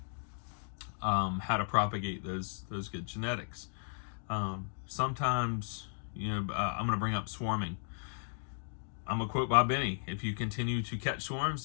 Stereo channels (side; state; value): right; silent; digital silence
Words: how to propagate those good genetics. Sometimes, I'm going to bring up swarming. I'm going to quote Bob Benny: if you continue to catch swarms,